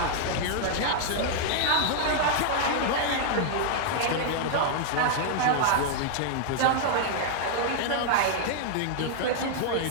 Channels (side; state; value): both; different; correlation -0.01